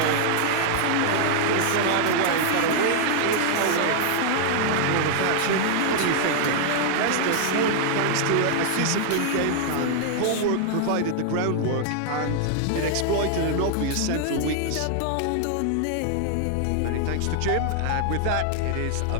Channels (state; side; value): different; both; correlation 0.00